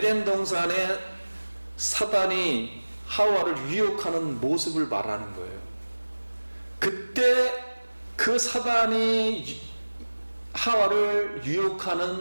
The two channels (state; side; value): inverted; both; correlation -1.00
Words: 동산에 사단이 하와를 유혹하는 모습을 말하는 거예요. 그때 그 사단이 하와를